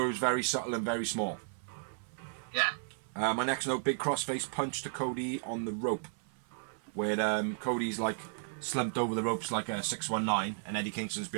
it was very subtle and very small. Yeah. My next note: big crossface punch to Cody on the rope, where Cody's like slumped over the ropes like a 619, and Eddie Kingston's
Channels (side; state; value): left; silent; 55 dB below the other